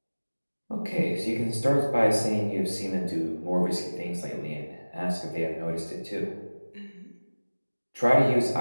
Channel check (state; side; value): inverted; both; correlation -1.00